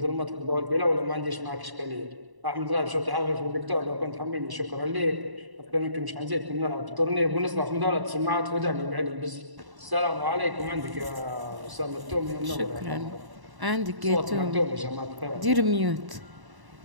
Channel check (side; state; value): left; late; 1.0 ms